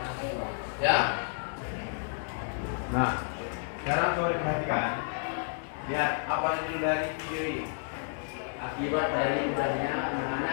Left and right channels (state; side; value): silent; right; digital silence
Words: Ya. Nah, sekarang coba diperhatikan. Lihat apa judul dari video ini. Akibat dari ubahnya